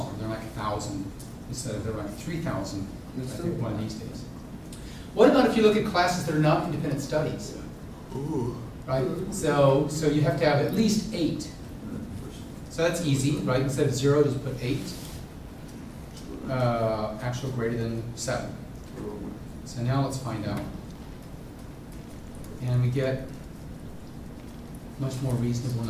they're like 1,000 instead of they're like 3,000, I think, one of these days. What about if you look at classes that are not independent studies? Ooh. Right? So you have to have at least 8. So that's easy, right? Instead of 0, just put 8. Actual greater than 7. So now let's find out. And we get a much more reasonable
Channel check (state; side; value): identical; both; correlation 1.00